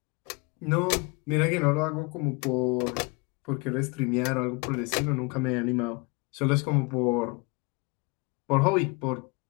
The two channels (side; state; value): right; quieter; 28.9 dB